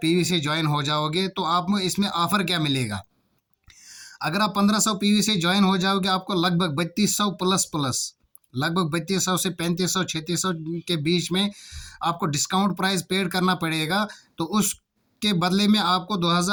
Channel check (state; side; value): identical; both; correlation 1.00